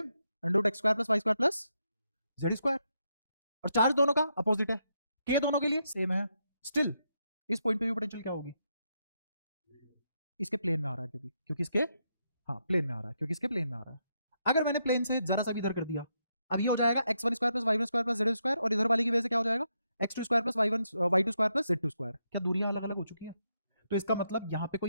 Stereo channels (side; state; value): both; inverted; correlation -0.80